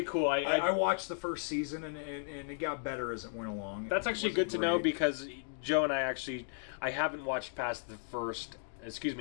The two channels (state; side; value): silent; right; digital silence